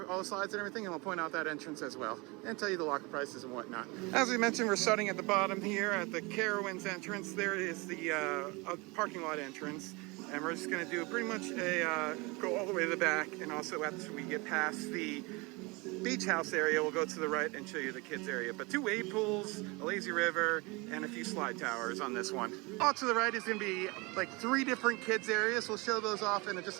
all the slides and everything, and we'll point out that entrance as well, and tell you the locker prices and whatnot. As we mentioned, we're starting at the bottom here at the Carowinds entrance. There is the parking lot entrance, and we're just going to do pretty much a go all the way to the back, and also after we get past the beach house area, we'll go to the right and show you the kids area. But 2 wave pools, a lazy river, and a few slide towers on this one. All to the right is going to be like 3 different kids areas. We'll show those off in just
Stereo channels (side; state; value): left; quieter; 26.1 dB